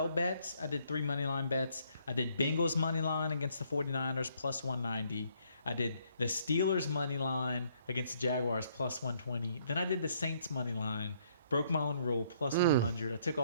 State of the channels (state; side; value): inverted; both; correlation -0.67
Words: bets, I did 3 money line bets. I did Bengals money line against the 49ers plus 190. I did the Steelers money line against the Jaguars plus 120. Then I did the Saints money line. Broke my own rule, plus 100. I took